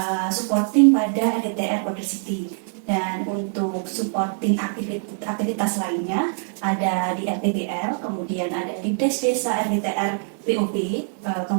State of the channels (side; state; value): left; silent; 61 dB below the other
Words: supporting pada RDTR Border City, dan untuk supporting aktivitas lainnya ada di RTBL, kemudian ada di Desa RDTR POP,